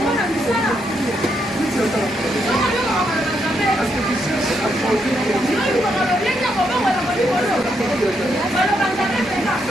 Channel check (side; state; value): both; normal; correlation 0.78